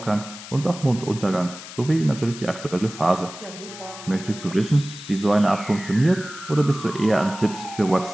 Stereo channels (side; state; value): left; noise; hiss, 14 dB below the sound